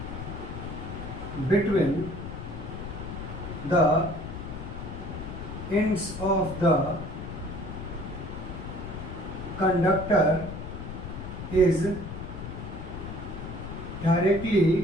between the ends of the conductor is directly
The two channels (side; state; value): left; noise; rumble, 8 dB below the sound